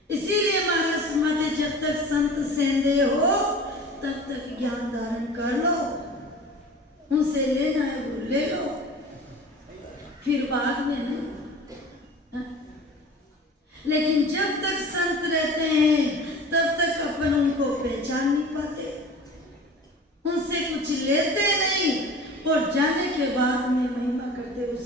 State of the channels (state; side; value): normal; both; correlation 0.40